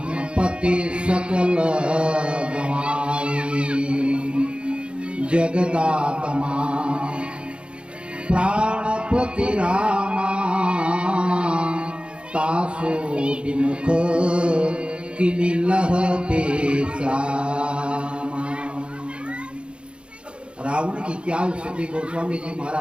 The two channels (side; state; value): left; late; 0.057 ms